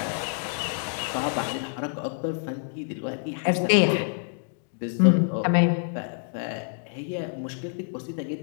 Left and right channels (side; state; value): right; silent; digital silence